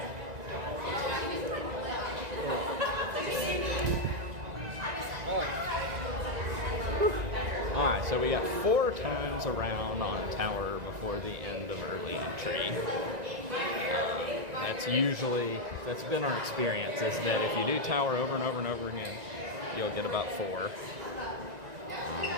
Alright, so we got 4 times around on tower before the end of early entry. That's been our experience, is that if you do tower over and over and over again, you'll get about 4. I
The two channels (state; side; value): late; left; 1.9 ms